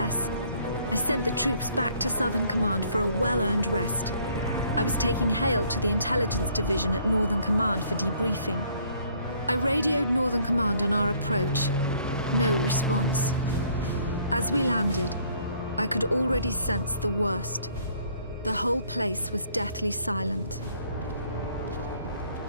I sent the troops back to Southern Command for a well-earned rest. I was taking Hale to the intelligence division at Northern Command for debriefing. I radioed Northern Command on our approach. No response. As we landed, I could already sense the worst. The whole place was deathly silent.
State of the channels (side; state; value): both; inverted; correlation -0.62